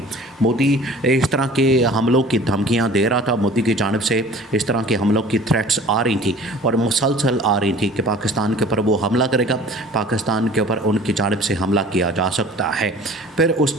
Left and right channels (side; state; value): both; normal; correlation 0.46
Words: मोदी इस तरह के हमलों की धमकियाँ दे रहा था, मोदी की जानिब से इस तरह के हमलों की थ्रेट्स आ रही थी और मुसलसल आ रही थी कि पाकिस्तान के ऊपर वो हमला करेगा, पाकिस्तान के ऊपर उनकी जानिब से हमला किया जा सकता है। फिर